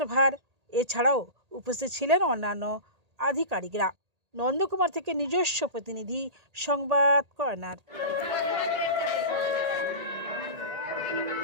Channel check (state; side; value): late; left; 1.8 ms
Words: এছাড়াও উপস্থিত ছিলেন অন্যান্য আধিকারিকরা। নন্দকুমার থেকে নিজস্ব প্রতিনিধি সংবাদ কর্নার।